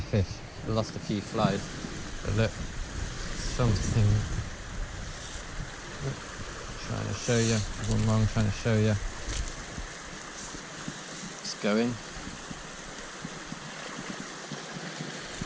I lost a few flies. But look, something. Trying to show you. One more I'm trying to show you. It's going.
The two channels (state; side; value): identical; both; correlation 1.00